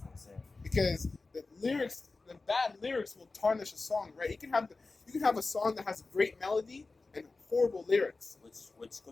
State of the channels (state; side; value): quieter; right; 3.7 dB